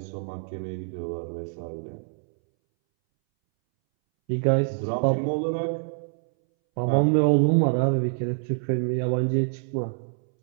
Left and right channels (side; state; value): left; silent; 61 dB below the other